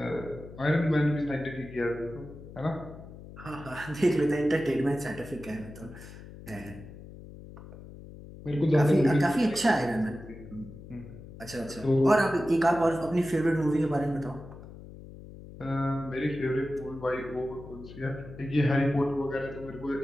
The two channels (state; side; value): noise; left; hum, 15 dB below the sound